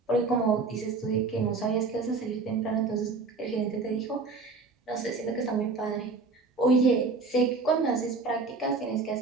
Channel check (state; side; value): quieter; left; 4.1 dB